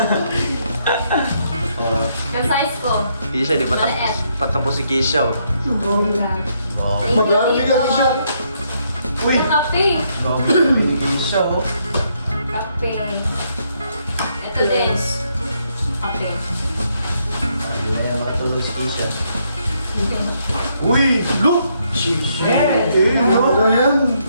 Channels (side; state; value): both; inverted; correlation -0.74